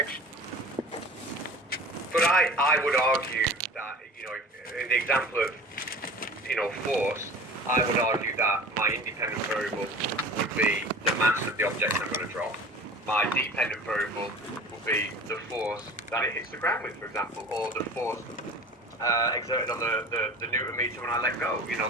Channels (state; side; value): normal; both; correlation 0.39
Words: But I would argue that, in the example of, force, I would argue that my independent variable would be the mass of the object I'm going to drop. My dependent variable would be the force that it hits the ground with, for example, or the force exerted on the Newton meter when I let go.